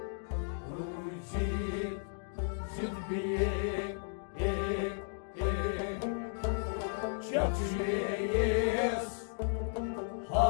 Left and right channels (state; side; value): silent; right; digital silence